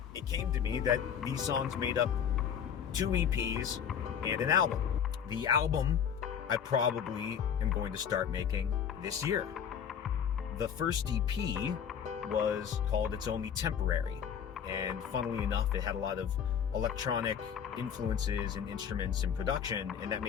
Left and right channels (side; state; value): right; quieter; 8.0 dB